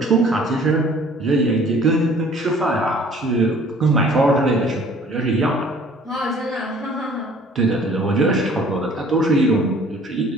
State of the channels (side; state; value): both; normal; correlation 0.53